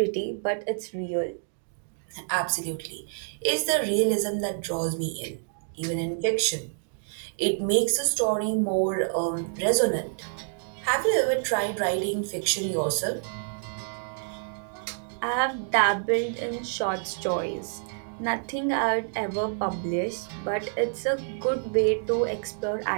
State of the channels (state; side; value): silent; left; digital silence